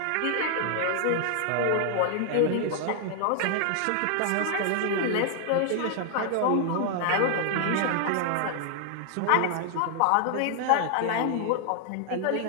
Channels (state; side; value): different; both; correlation 0.00